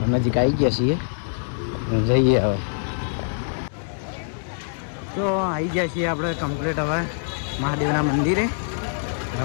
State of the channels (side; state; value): right; silent; digital silence